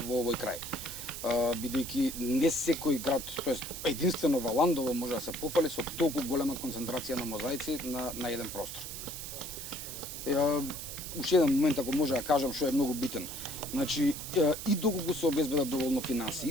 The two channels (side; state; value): right; noise; hiss, 8 dB below the sound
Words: овој крај. Бидејќи не секој град, тоест единствено Валандово може да се пофали со толку голема концентрација на мозаици на еден простор. Уште еден момент, ако може да кажам, што е многу битен. Значи, и доколку се обезбедат доволно финанси,